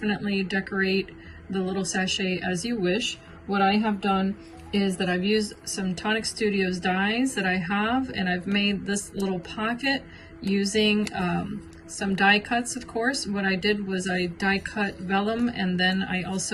decorate the little sachet as you wish. What I have done is that I've used some tonicstudios dies that I have, and I've made this little pocket using some die cuts. Of course, what I did was I die cut vellum, and then I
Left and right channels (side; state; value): both; identical; correlation 1.00